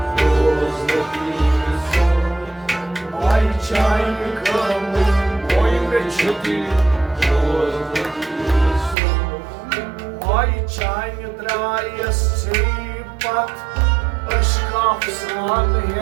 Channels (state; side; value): drops out; left; at 9.0 s